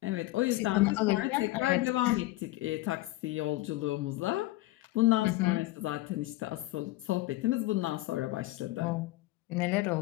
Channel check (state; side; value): quieter; right; 18.3 dB